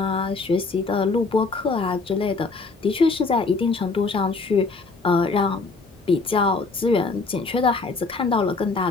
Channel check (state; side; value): quieter; right; 4.0 dB